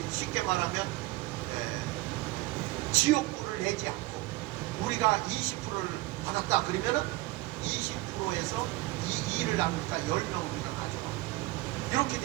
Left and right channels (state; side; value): quieter; left; 19.8 dB